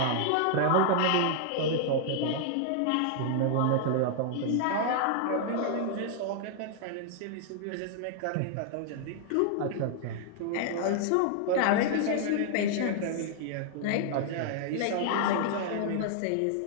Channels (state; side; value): different; both; correlation -0.01